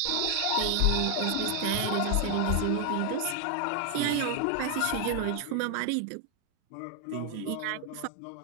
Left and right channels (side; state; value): both; different; correlation 0.00